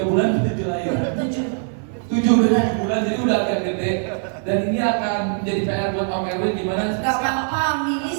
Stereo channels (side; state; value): left; silent; 57 dB below the other